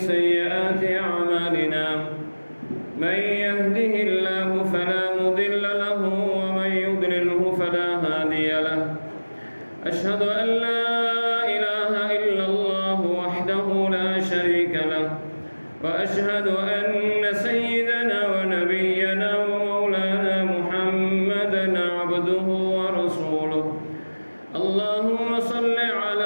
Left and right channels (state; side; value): inverted; both; correlation -1.00